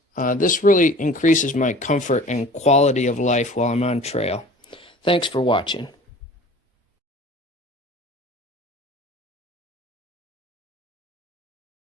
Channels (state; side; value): normal; both; correlation 0.44